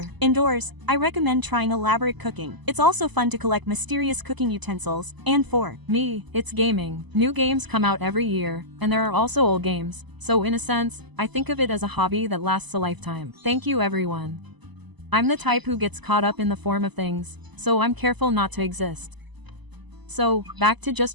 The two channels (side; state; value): left; late; 1.0 ms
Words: indoors, I recommend trying elaborate cooking. It's also fun to collect mysterious cooking utensils, and for me, it's gaming. New games come out every year, and there are also old games, so in a sense, I think of it as a hobby that lasts a lifetime. Thank you everyone. I'm the type who gets caught up in the form of things, so I'm careful not to exist. So, back to